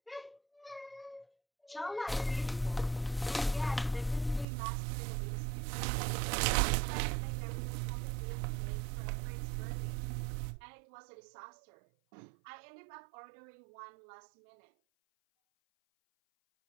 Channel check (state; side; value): drops out; left; at 4.5 s